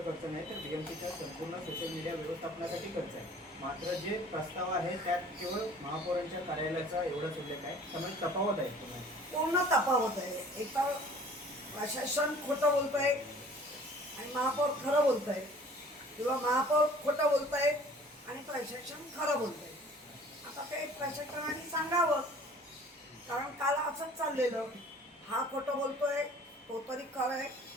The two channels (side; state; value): both; normal; correlation 0.50